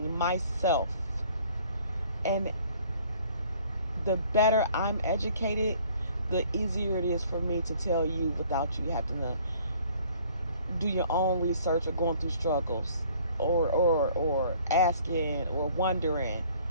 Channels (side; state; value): both; inverted; correlation -0.56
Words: myself. And the better I'm educated, the easier it is for me to tell you without you having to do your own research or going through struggles or asking or wondering.